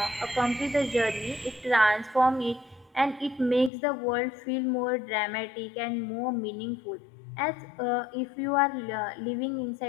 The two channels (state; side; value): drops out; right; at 3.7 s